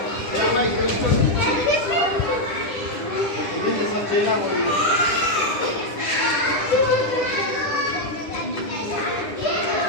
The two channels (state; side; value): late; right; 10 ms